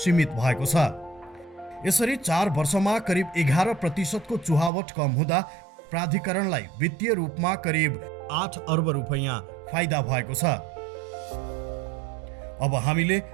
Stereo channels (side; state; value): left; drops out; at 4.7 s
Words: भएको छ। यसरी 4 वर्षमा करिब 11% को चुहावट कम हुँदा प्राधिकरणलाई वित्तीय रूपमा करिब 8 अर्ब रुपैयाँ फाइदा भएको छ। अब हामीले